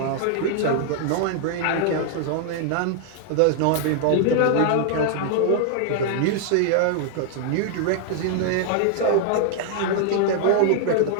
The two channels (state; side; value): different; both; correlation 0.00